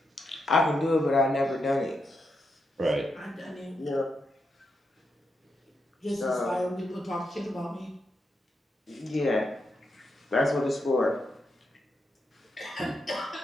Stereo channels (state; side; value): normal; both; correlation 0.84